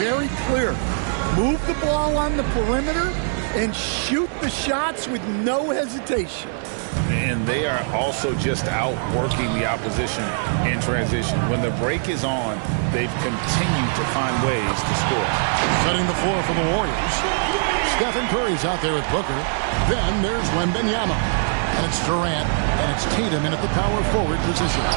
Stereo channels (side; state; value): left; silent; digital silence